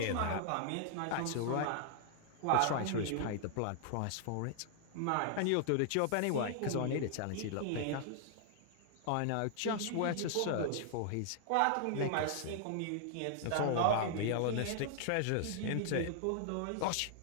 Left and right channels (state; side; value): different; both; correlation 0.00